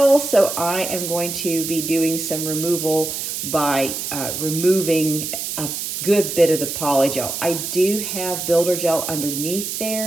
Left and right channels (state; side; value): noise; right; hiss, 4 dB below the sound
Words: so I am going to be doing some removal by removing a good bit of the polygel. I do have builder gel underneath